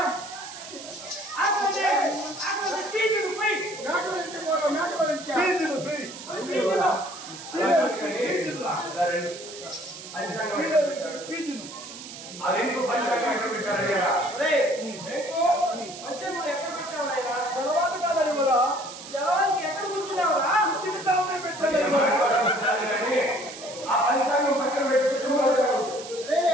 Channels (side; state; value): right; noise; hiss, 13 dB below the sound